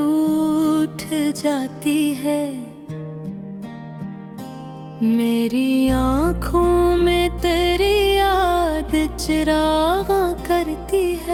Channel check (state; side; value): identical; both; correlation 1.00